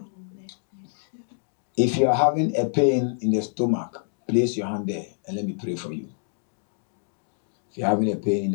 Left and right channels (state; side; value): silent; right; 61 dB below the other